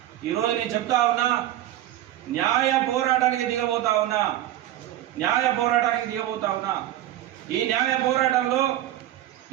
ఈరోజు నేను చెప్తా ఉన్నా, న్యాయ పోరాటానికి దిగబోతా ఉన్నా. ఈ న్యాయ పోరాటంలో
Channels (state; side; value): quieter; left; 13.6 dB